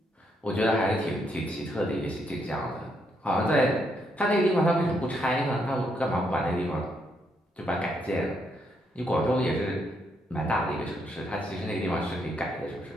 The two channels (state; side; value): normal; both; correlation 0.76